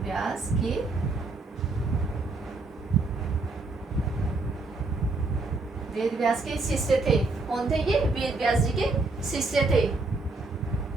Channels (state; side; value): quieter; left; 3.4 dB